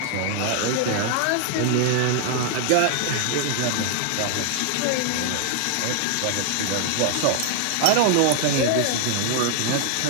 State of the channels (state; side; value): different; both; correlation 0.00